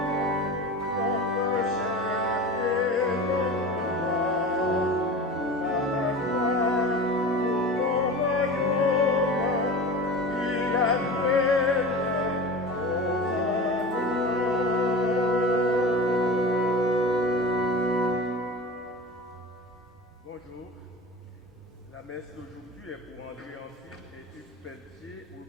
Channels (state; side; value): normal; both; correlation 0.32